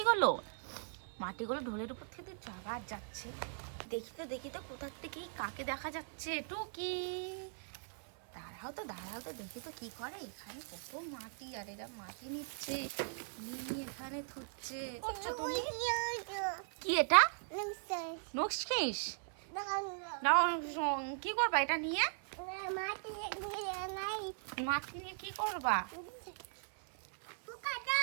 মাটিগুলো ঢোলের উপর থেকে দিচ্ছ। আবার যাচ্ছে। দেখি তো কোথার থেকে কাকে দেখা যাচ্ছে। টুকি, দাঁড়াও তো দেখি তো কি করে। এখানে কত মাটি, আর এরা মাটি নিচ্ছে, নিয়ে এখানে থুচ্ছে। করছো তুমি কি? এটা নক্সফিশ। কি করবা এটা নিয়ে? মাটি নিয়ে কি করবা?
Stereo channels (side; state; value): left; silent; 52 dB below the other